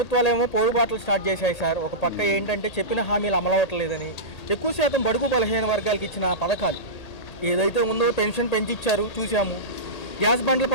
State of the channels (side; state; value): right; late; 1.8 ms